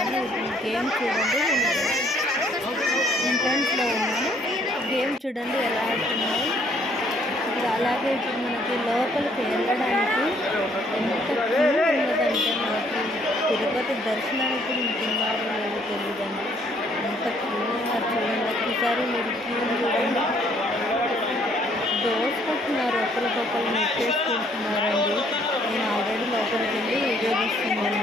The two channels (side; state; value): both; normal; correlation 0.64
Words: గేమ్ చూడండి, ఎంట్రన్స్లో ఉన్నాను. గేమ్ చూడండి ఎలా ఆడుతున్నాయి. ఇప్పుడు అలాగే ఇప్పుడు మనకి లోపలికి వెళ్ళడానికి ఎంత క్యూ ఉన్నదంటే, మనకి తిరుపతి దర్శనానికి ఉంటున్నారో లేదో తెలియదండి, ఎంత క్యూ ఉన్నారు చూడండి. ఒకసారి మీరు క్యూ చూడండి, దోసుకుంటున్నారు, ఒకరికొకరు నెట్టేసుకుంటున్నారండి. నేను ఆల్రెడీ లోపలికి వెళ్ళి వీడియో